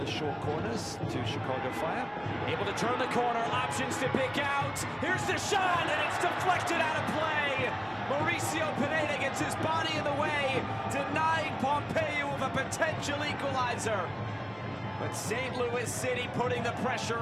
short corners to Chicago Fire. Able to turn the corner, options to pick out. Here's the shot, and it's deflected out of play. Mauricio Pineda gets his body in the way, denying Pompeu of a potential equalizer. But St. Louis City putting the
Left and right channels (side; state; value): both; identical; correlation 1.00